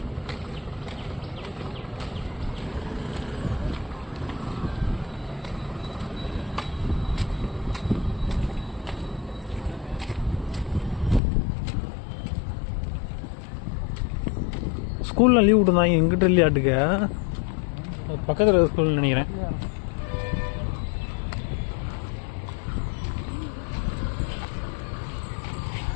ஸ்கூலில் லீவ் விட்டுருந்தாங்க. எங்கிட்ட இல்லையாட்டுக்க பக்கத்தில் ஸ்கூல்னு நினைக்கிறேன்.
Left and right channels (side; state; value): right; drops out; at 11.2 s